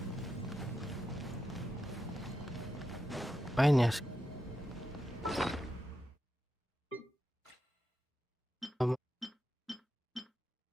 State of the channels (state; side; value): normal; both; correlation 0.87